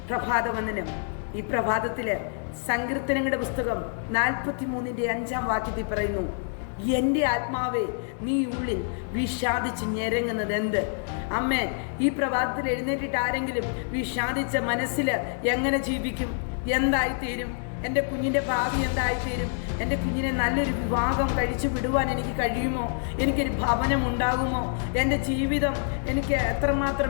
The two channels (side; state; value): right; silent; 60 dB below the other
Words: പ്രഭാതവന്ദനം. ഈ പ്രഭാതത്തില് സങ്കീർത്തനങ്ങളുടെ പുസ്തകം 43:5 പറയുന്നു, എൻ്റെ ആത്മാവേ നീ ഉള്ളിൽ വിഷാദിച്ച് ഞെരങ്ങുന്നത് എന്ത്? അമ്മേ, ഈ പ്രഭാതത്തിൽ എഴുന്നേറ്റിട്ട് ആരെങ്കിലും വിഷാദിച്ച മനസ്സിൽ എങ്ങനെ ജീവിക്കും? എന്തായിത്തീരും? എൻ്റെ കുഞ്ഞിൻ്റെ ഭാവി എന്തായിത്തീരും? എൻ്റെ കുഞ്ഞിനെ നല്ലൊരു വിവാഹം കഴിച്ചു വിടുവാൻ എനിക്ക് കഴിയുമോ? എനിക്കൊരു ഭവനം ഉണ്ടാകുമോ? എൻ്റെ ജീവിതം എനിക്ക്